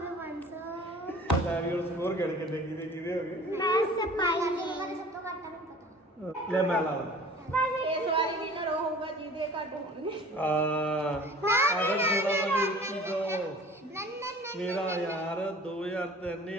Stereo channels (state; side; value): normal; both; correlation 0.46